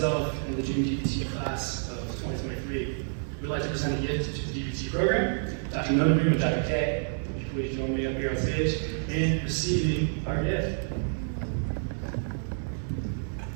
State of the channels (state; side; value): silent; left; digital silence